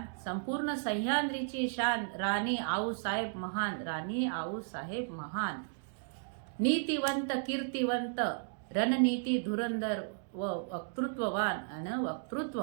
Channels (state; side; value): silent; left; digital silence